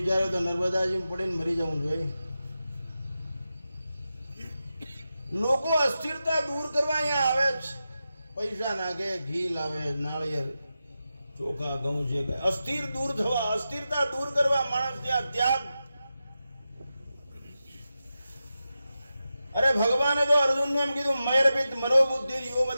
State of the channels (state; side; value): inverted; both; correlation -0.91